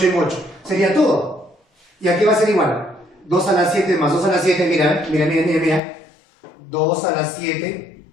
en 8. Sería todo. ¿Y aquí va a ser igual? 2 a la 7 más 2 a la 7, mira. 2 a la 7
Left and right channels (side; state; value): right; drops out; at 5.8 s